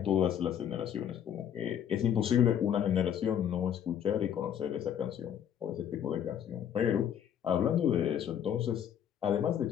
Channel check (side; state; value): right; quieter; 9.3 dB